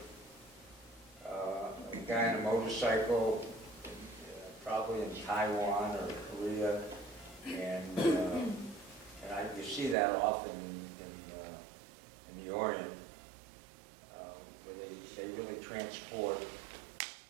a guy on a motorcycle, probably in Taiwan or Korea, and you see that often in the Orient, where they really transport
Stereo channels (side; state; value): left; drops out; at 10.0 s